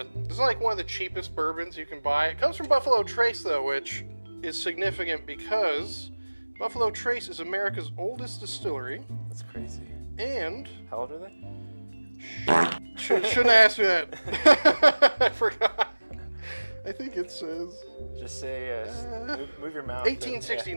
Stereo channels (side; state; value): both; inverted; correlation -1.00